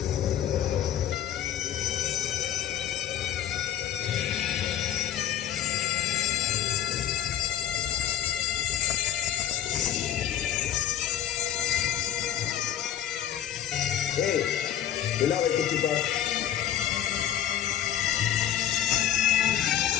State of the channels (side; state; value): right; quieter; 10.7 dB